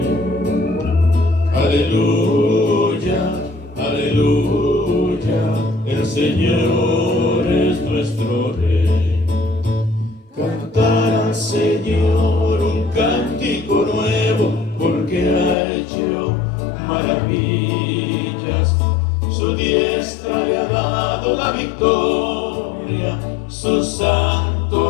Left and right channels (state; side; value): drops out; right; at 15.6 s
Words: Aleluya, aleluya, el Señor es nuestro Rey. Cantar al Señor un cántico nuevo, porque ha hecho maravillas. Su diestra le ha dado la victoria, su